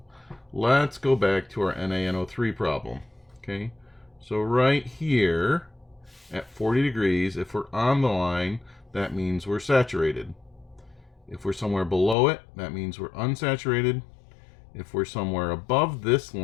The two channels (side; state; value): right; drops out; at 12.2 s